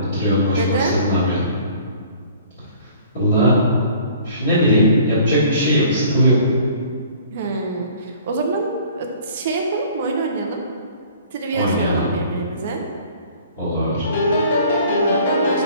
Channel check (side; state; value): both; inverted; correlation -0.51